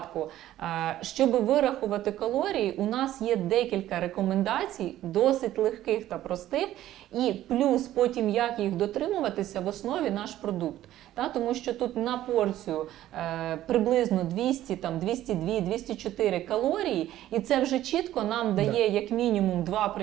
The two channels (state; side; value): quieter; left; 13.5 dB